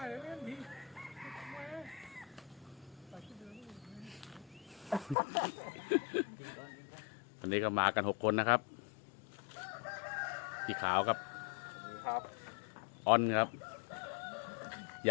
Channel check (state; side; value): drops out; right; at 5.2 s